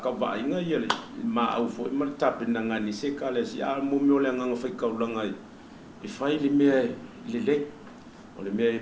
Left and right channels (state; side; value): identical; both; correlation 1.00